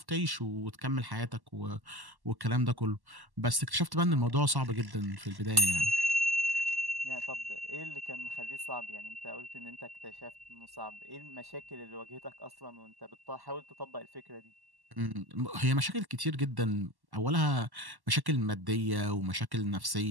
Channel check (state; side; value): late; left; 1.1 ms